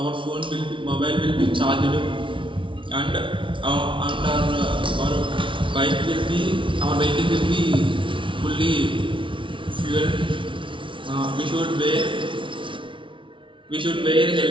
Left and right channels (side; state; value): left; late; 0.25 ms